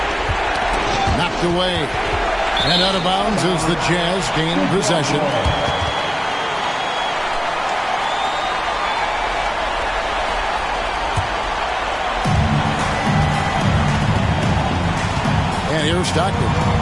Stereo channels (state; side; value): identical; both; correlation 1.00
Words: Knocked away. And out of bounds as the Jazz gain possession. And here's Stockton.